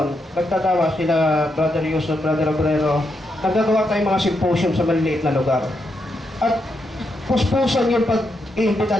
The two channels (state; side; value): normal; both; correlation 0.82